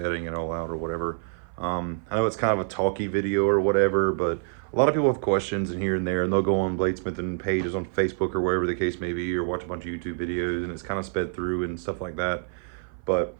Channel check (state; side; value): silent; left; 55 dB below the other